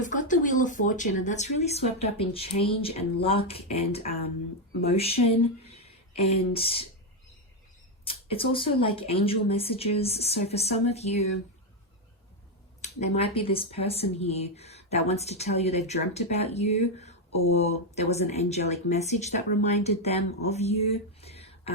got the Wheel of Fortune, and that's really swept up in change and luck and motion. And it's also like angel messages. So for some of you, there might be this person here that wants to tell you they've dreamt about you, or there was an angelic message that reminded them of you.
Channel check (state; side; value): normal; both; correlation 0.04